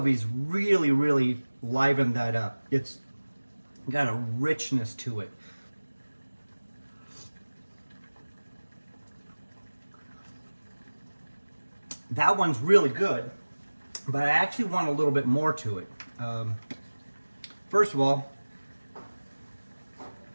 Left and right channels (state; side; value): inverted; both; correlation -1.00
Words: really, really liven that up. It's got a richness to it. That one's really good, but I actually want a little bit more to it. First of all,